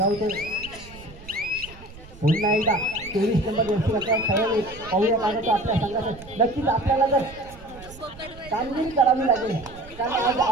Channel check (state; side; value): noise; right; rumble, 18 dB below the sound